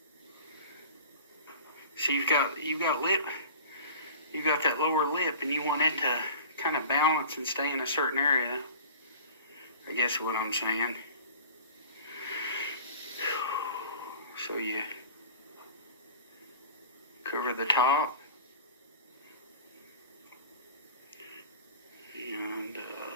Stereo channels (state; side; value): inverted; both; correlation -0.40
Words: So you've got lip, you've got that lower lip, and you want it to kind of balance and stay in a certain area. I guess what I'm saying. So you cover the top, and